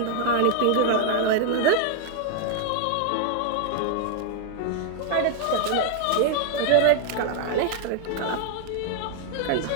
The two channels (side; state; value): both; different; correlation 0.00